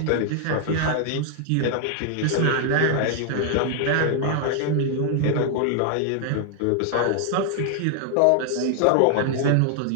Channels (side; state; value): both; different; correlation 0.00